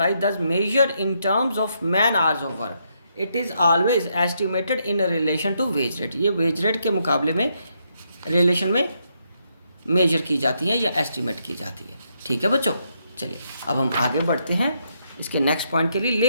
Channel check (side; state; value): both; inverted; correlation -0.77